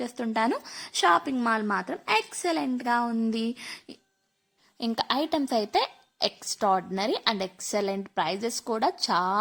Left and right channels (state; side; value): identical; both; correlation 1.00